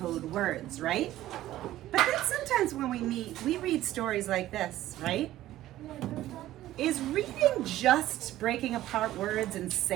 words, right? But then sometimes when we meet, we read stories like this, right? Is reading just breaking apart words and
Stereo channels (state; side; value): quieter; left; 14.4 dB